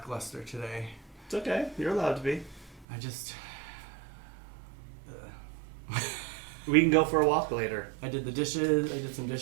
today. It's okay. You're allowed to be. I just. We can go for a walk later. I did the dishes. I did some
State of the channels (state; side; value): drops out; left; at 2.9 s